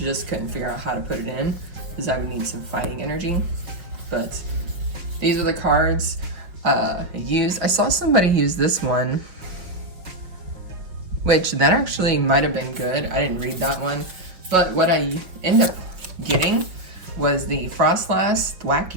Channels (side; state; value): left; late; 5.4 ms